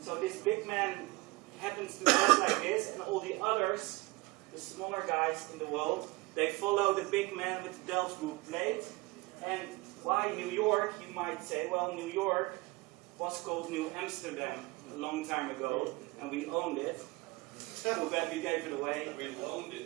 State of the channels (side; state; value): left; quieter; 23.0 dB